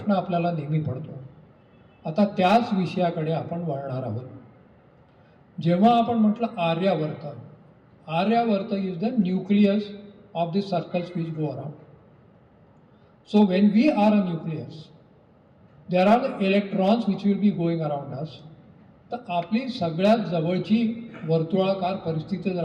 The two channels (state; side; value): identical; both; correlation 1.00